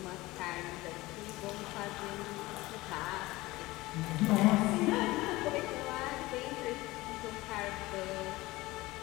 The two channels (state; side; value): quieter; right; 19.6 dB